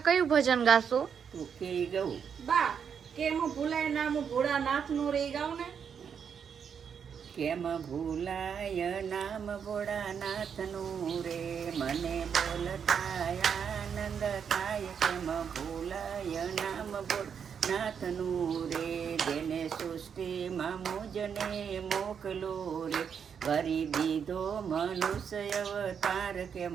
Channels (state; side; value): quieter; left; 7.2 dB